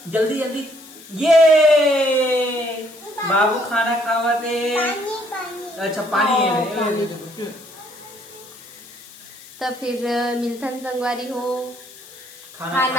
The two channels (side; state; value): left; noise; hiss, 20 dB below the sound